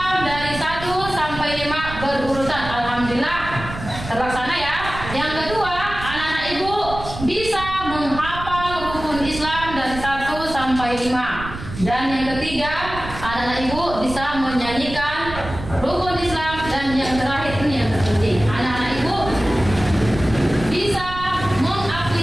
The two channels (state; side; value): noise; right; rumble, 10 dB below the sound